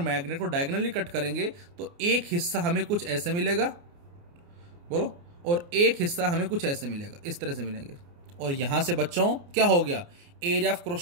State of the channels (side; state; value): left; late; 29 ms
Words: मैग्नेट को डायगोनली कट करेंगे तो एक हिस्सा हमें कुछ ऐसे मिलेगा, बोलो, और एक हिस्सा हमें कुछ ऐसे मिलेगा, इस तरह से मिलेंगे। और यहां से बच्चों क्या हो गया, एरिया ऑफ